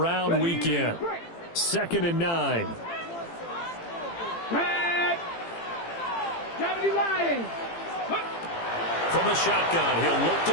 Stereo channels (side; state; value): right; late; 18 ms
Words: weekend. 2nd and 9. From the shotgun, he'll look